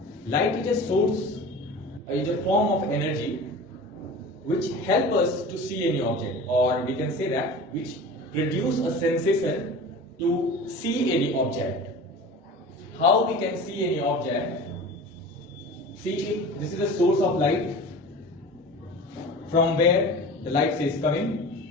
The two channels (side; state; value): both; normal; correlation 0.36